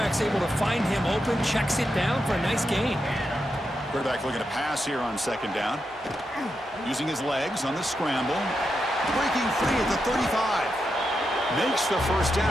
able to find him open, checks it down for a nice gain. Quarterback looking to pass here on 2nd down. Using his legs on the scramble. Breaking free at the 35. Makes the first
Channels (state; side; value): normal; both; correlation 0.86